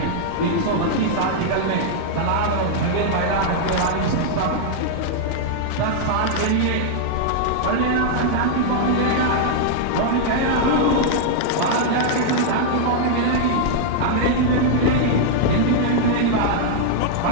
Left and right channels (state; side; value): different; both; correlation -0.01